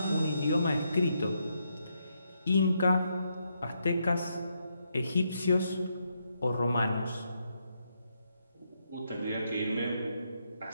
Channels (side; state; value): both; inverted; correlation -0.79